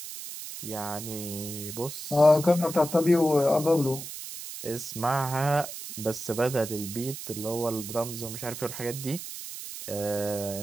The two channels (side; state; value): right; noise; hiss, 9 dB below the sound